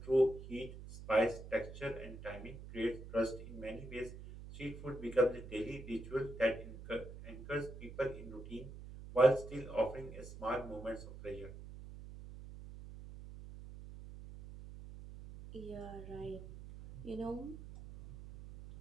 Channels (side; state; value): right; noise; hum, 12 dB below the sound